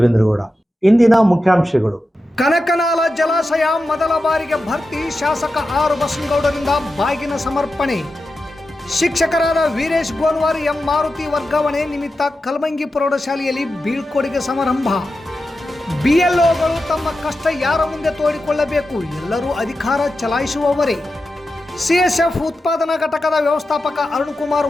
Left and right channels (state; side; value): normal; both; correlation 0.91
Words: ಇಂದಿನ ಮುಖ್ಯಾಂಶಗಳು. ಕನಕನಾಲ ಜಲಾಶಯ ಮೊದಲ ಬಾರಿಗೆ ಭರ್ತಿ. ಶಾಸಕ ಆರ್ ಬಸನಗೌಡರಿಂದ ಬಾಗಿನ ಸಮರ್ಪಣೆ. ಶಿಕ್ಷಕರಾದ ವೀರೇಶ್ ಗೋನ್ವಾರ್, ಎಂ ಮಾರುತಿ ವರ್ಗಾವಣೆ ನಿಮಿತ್ತ ಕಲಮಂಗಿ ಪ್ರೌಢಶಾಲೆಯಲ್ಲಿ ಬೀಳ್ಕೊಡುಗೆ ಸಮಾರಂಭ. ಬಿಎಲ್ಒಗಳು ತಮ್ಮ ಕಷ್ಟ ಯಾರ ಮುಂದೆ ತೋಡಿಕೊಳ್ಳಬೇಕು, ಎಲ್ಲರೂ ಅಧಿಕಾರ ಚಲಾಯಿಸುವವರೇ. ಸಿಎಸ್ಎಫ್ ಉತ್ಪಾದನಾ ಘಟಕದ ವ್ಯವಸ್ಥಾಪಕ ಅರುಣ್ ಕುಮಾರ್